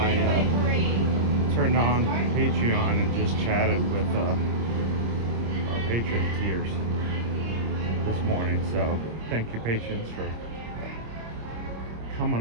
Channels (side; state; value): left; late; 26 ms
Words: turned on Patreon and just chatted with our patron tiers this morning. So thank you, patrons, for